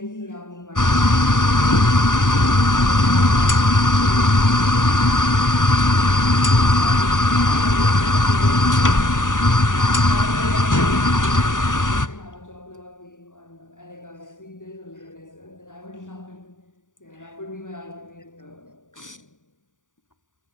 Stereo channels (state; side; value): late; right; 0.88 ms